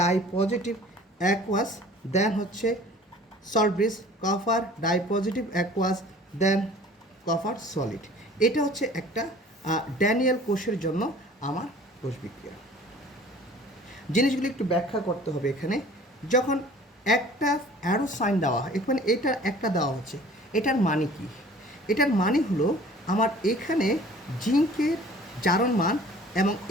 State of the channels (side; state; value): both; normal; correlation 0.48